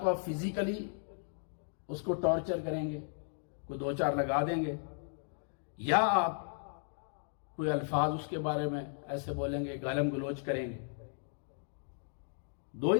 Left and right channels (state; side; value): silent; right; digital silence